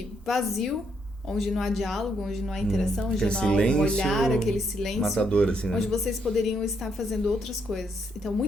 vazio, onde não há diálogo, onde não há interação, onde não há um olhar, aquele silêncio, matador, assim, né? onde vocês poderiam estar fazendo outras coisas. Então,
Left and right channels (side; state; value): both; normal; correlation 0.75